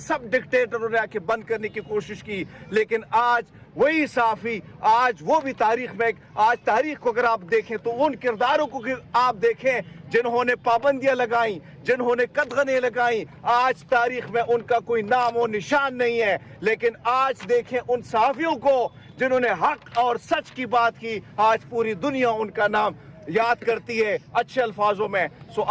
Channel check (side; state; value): both; identical; correlation 1.00